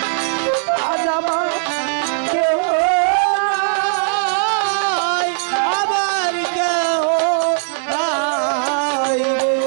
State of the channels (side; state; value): left; silent; digital silence